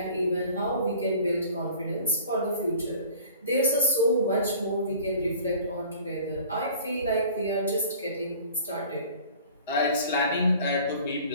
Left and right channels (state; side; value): inverted; both; correlation -0.47